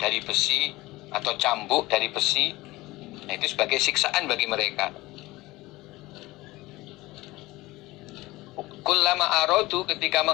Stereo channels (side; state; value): right; quieter; 19.7 dB